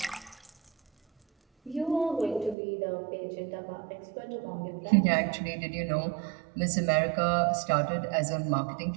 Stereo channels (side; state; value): left; drops out; at 2.6 s